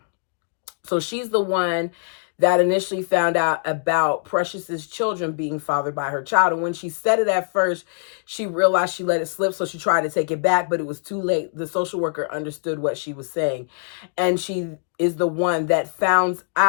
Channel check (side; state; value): right; silent; digital silence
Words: So she's the one that initially found out about Precious's children being fathered by her child. And when she said it at first, she realized she let it slip, so she tried to take it back, but it was too late. The social worker understood what she was saying, and she is the one that finds